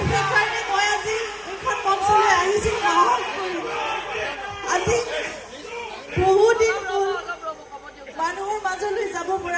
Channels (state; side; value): identical; both; correlation 1.00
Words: সেইকাৰণে মই আজি এইখন মঞ্চলৈ আহিছোঁ সাহস কৰি। আজি বহুদিন মোৰ মানুহৰ মাজলৈ যাব